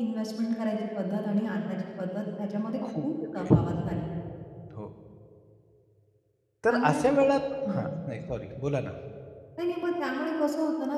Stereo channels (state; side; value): identical; both; correlation 1.00